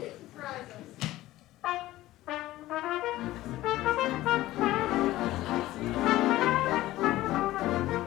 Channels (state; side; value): quieter; right; 16.2 dB